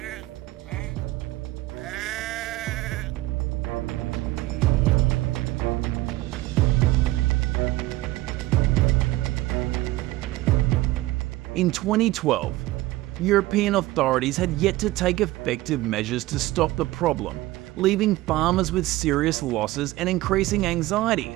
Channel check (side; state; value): left; quieter; 17.7 dB